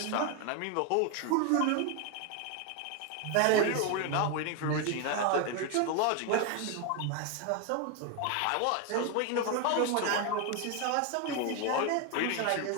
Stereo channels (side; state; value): both; different; correlation 0.01